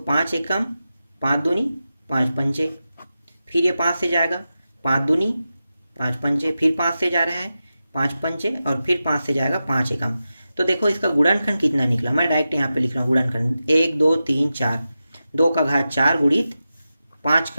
5 एकम 5 दूनी 5 पंचे, फिर ये 5 से जाएगा 5 दूनी 5 पंचे, फिर 5 से जा रहा है 5 पंचे, और फिर 5 से जाएगा 5 एकम। तो देखो इसका गुणनखंड कितना निकला, मैं डायरेक्ट यहाँ पे लिख रहा हूँ गुणनखंड, 1 2 3 4, 2 का घात 4 गुणित 5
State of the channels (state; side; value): inverted; both; correlation -0.92